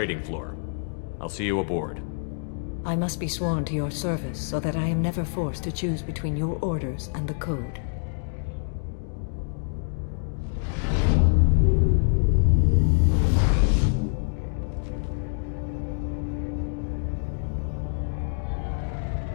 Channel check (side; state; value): right; silent; digital silence